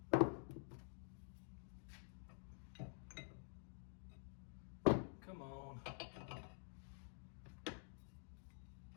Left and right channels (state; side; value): silent; right; digital silence